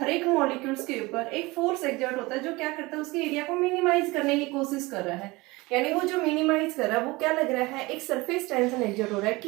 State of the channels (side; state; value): left; quieter; 22.5 dB